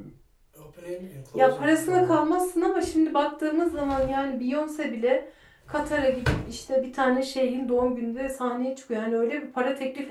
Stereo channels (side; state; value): both; identical; correlation 1.00